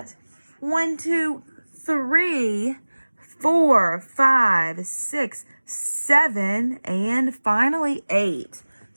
1, 2, 3, 4, 5, 6, 7, and finally 8.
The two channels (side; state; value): both; inverted; correlation -1.00